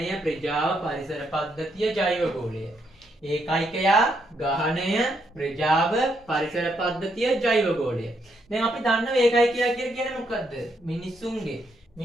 ප්‍රජාව පරිසර පද්ධතිය ජෛවගෝලය ඒකයිකයා ගහණය ප්‍රජාව පරිසර පද්ධතිය ජෛවගෝලය. දැන් අපි දන්නවා ඒකයිකයා කියලා කියන්නේ මොකද්ද? මිනිස්සුන්ගේ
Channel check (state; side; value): normal; both; correlation 0.76